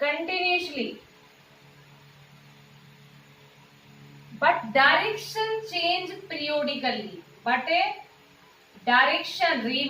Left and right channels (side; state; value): both; identical; correlation 1.00